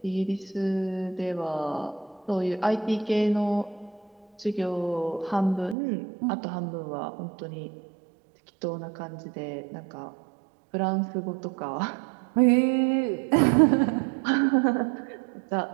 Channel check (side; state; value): left; drops out; at 5.8 s